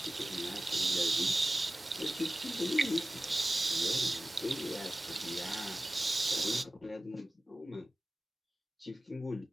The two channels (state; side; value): normal; both; correlation 0.95